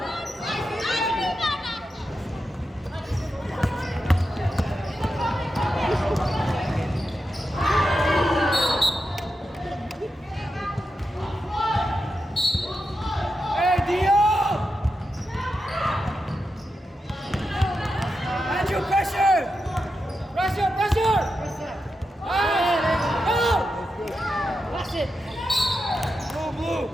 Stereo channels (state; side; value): normal; both; correlation 0.88